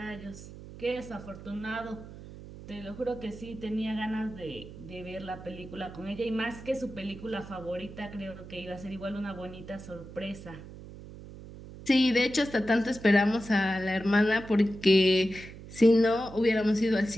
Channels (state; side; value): noise; right; hum, 15 dB below the sound